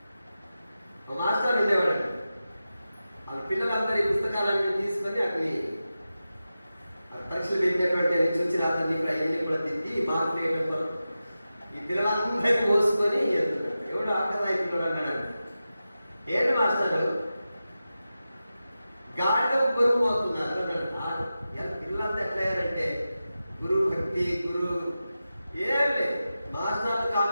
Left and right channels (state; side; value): inverted; both; correlation -0.93